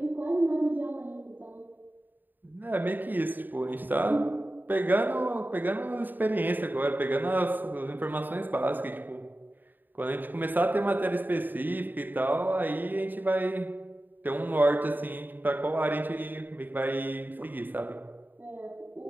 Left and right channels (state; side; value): late; left; 0.090 ms